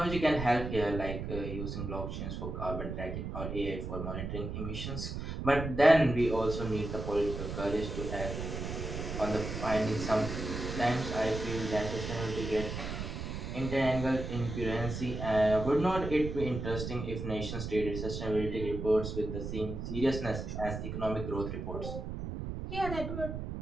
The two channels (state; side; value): noise; right; rumble, 5 dB below the sound